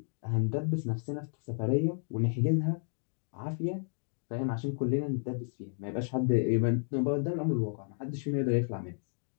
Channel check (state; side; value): silent; right; digital silence